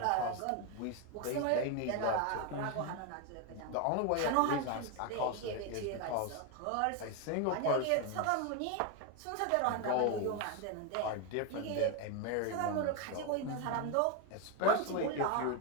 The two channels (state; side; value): different; both; correlation 0.01